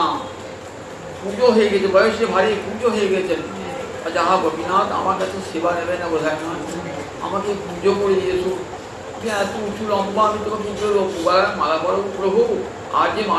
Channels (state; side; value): identical; both; correlation 1.00